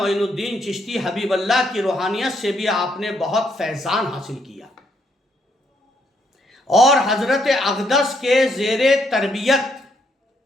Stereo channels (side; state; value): both; normal; correlation 0.73